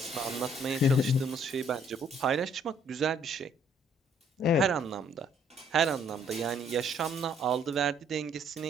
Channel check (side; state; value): both; normal; correlation 0.64